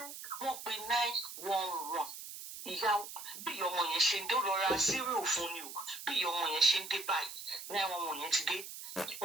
wọ́n pe 911 ìyá bí ìyá ọmọ yẹn ṣe ń dé ó lọ ra cereal fún ni o bí ìyá ọmọ yẹn ṣe ń dé báyìí 911 yẹn ti dé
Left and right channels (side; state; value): right; noise; hiss, 10 dB below the sound